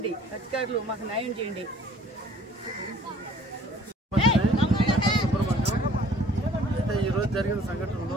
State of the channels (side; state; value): both; normal; correlation 0.55